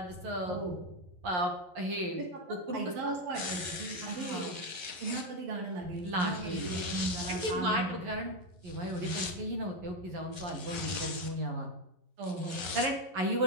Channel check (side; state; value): left; late; 11 ms